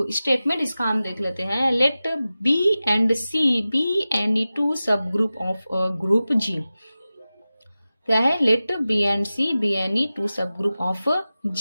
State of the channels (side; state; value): both; inverted; correlation -0.95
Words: स्टेटमेंट इसका हम देख लेते हैं। Let B and C be any two subgroup of group G. क्या है? Let B and C be any two subgroup of